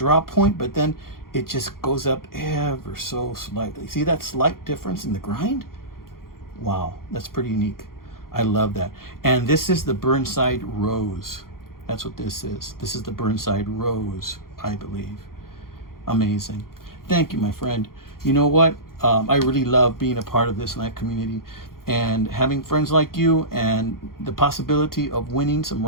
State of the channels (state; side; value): late; right; 0.92 ms